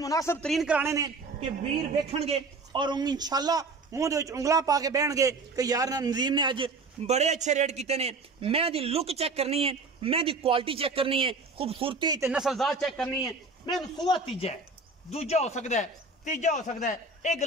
तरीन कराने ने कि वीर वेखणगे और इंशाअल्लाह मुंह दे विच उंगलां पा के बहणगे कि यार नदीम ने अज बड़े अच्छे रेट किए ने। मैं दी लुक चेक करनी है मैं दी क्वालिटी चेक करनी है खूबसूरती ते नस्लजात चेक करनी है। मैं सूआ तीजा है दूजा हो सकता है तीजा हो सकता है ये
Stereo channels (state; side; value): quieter; left; 3.6 dB